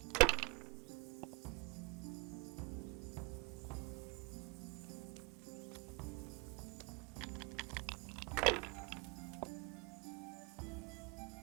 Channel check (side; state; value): left; quieter; 27.8 dB